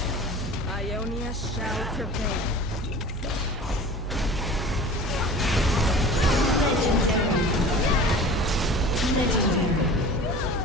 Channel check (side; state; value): both; normal; correlation 0.39